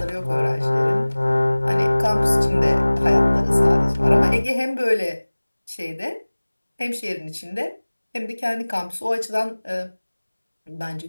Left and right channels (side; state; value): both; inverted; correlation -1.00